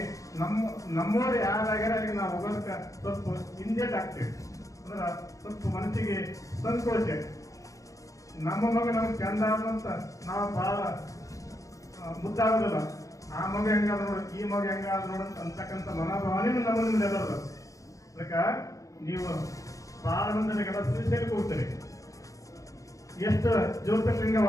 ನಮ್ಮವ್ರು ಯಾರಾಗ್ಯಾರ ಅಲ್ಲಿಗೆ ನಾವು ಹೋಗೋದಕ್ಕೆ ಸ್ವಲ್ಪ ಹಿಂದೇಟ್ ಆಗ್ತೇವೆ. ಅಂದ್ರೆ ಸ್ವಲ್ಪ ಮನಸ್ಸಿಗೆ ಸಂಕೋಚ. ನಮ್ಮ ಮಗ ನಮ್ಗೆ ಚಂದ ಅಂತ ನಾವು ಬಹಳ ಮುದ್ದಾಗೋದಿಲ್ಲ. ಆ ಮಗ ಹೆಂಗಾದ ನೋಡ, ಈ ಮಗ ಹೆಂಗಾದ ನೋಡ ಅಂತಕ್ಕಂಥ ಮನೋಭಾವನೆ ನಮ್ಮಲ್ಲಿ ಎಲ್ಲರದ. ಅದಕ್ಕೆ ನೀವು ಬಹಳ ಮಂದಿಗೆಲ್ಲ ಶ್ರೀಶೈಲಕ್ಕೆ ಹೋಗ್ತೀರಿ, ಎಷ್ಟು ಜ್ಯೋತಿರ್ಲಿಂಗ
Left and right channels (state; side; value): late; right; 0.16 ms